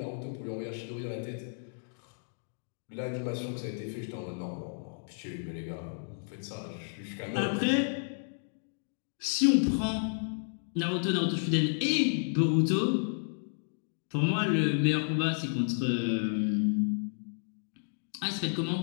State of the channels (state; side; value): silent; right; digital silence